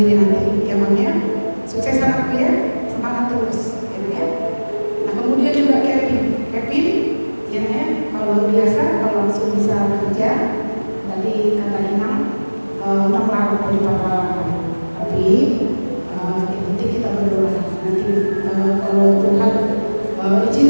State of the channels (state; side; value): inverted; both; correlation -1.00